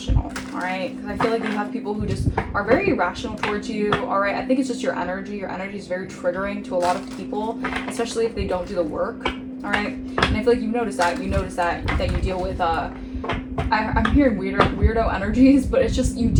all right? Because I feel like you have people who just are very irrational towards you, all right? I think it's just your energy. Your energy is very triggering to a lot of people, especially if they don't do the work, all right? And I feel like you notice that you deal with I'm hearing weirdo energies, but it's just you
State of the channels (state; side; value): identical; both; correlation 1.00